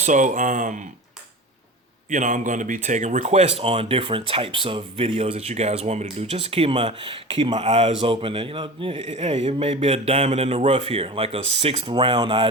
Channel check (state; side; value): normal; both; correlation 0.33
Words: I'm going to be taking requests on different types of videos that you guys want me to do, just to keep my eyes open. And hey, it may be a diamond in the rough here, like a sixth round